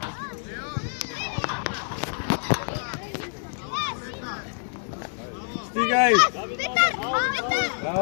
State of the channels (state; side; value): silent; right; 57 dB below the other